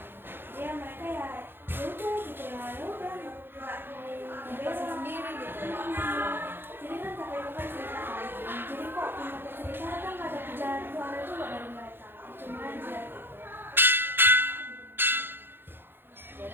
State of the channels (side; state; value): left; late; 0.10 ms